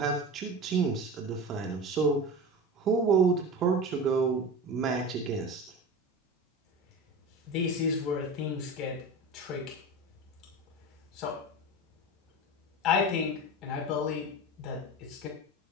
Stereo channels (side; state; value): both; normal; correlation 0.29